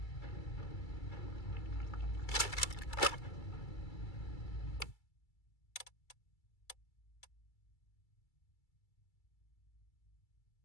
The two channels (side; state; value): right; late; 2.3 ms